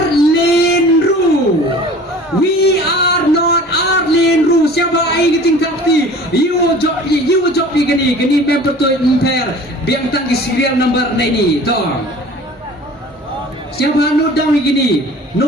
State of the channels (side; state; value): both; normal; correlation 0.44